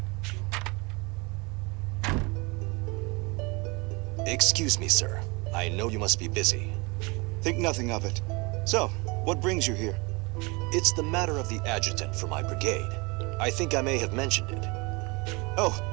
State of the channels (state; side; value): quieter; left; 27.3 dB